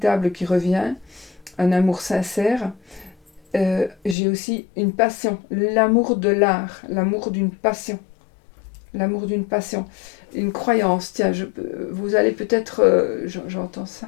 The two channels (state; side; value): drops out; right; at 4.2 s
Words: qui revient, un amour sincère. J'ai aussi une passion, l'amour de l'art, l'amour d'une passion. L'amour d'une passion, une croyance. Tiens, vous allez peut-être... j'entends